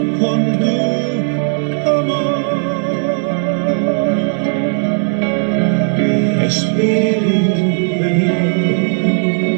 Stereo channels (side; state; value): left; silent; digital silence